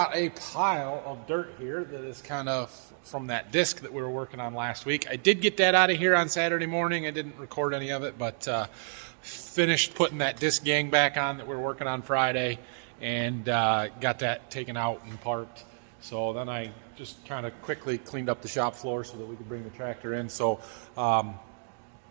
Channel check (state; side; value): silent; left; digital silence